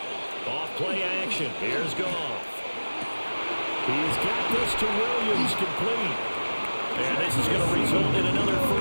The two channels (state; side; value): inverted; both; correlation -1.00